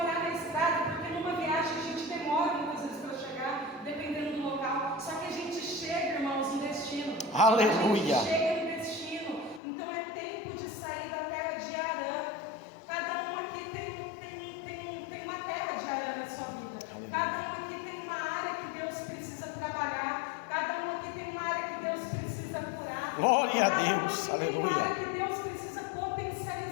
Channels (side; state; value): right; drops out; at 9.6 s